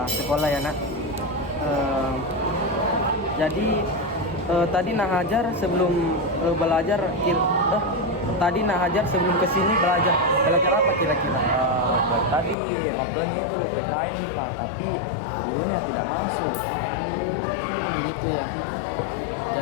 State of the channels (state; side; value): drops out; right; at 12.6 s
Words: sekolah ya nak. Jadi tadi Nah Hajar sebelum belajar tadi Nah Hajar sebelum kesini belajar apa kira-kira? Tadi ngobrolnya itu PKN nih Pak, tapi gurunya tidak masuk. Begitu ya.